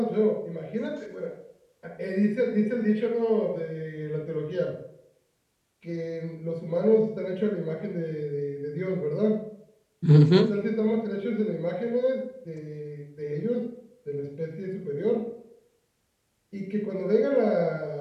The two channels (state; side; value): identical; both; correlation 1.00